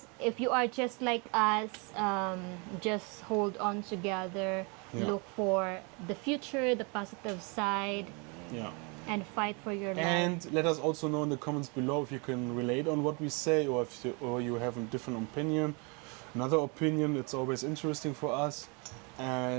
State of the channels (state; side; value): quieter; left; 32.2 dB